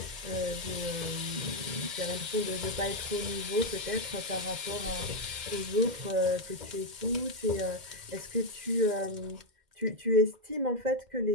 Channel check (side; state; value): left; late; 2.1 ms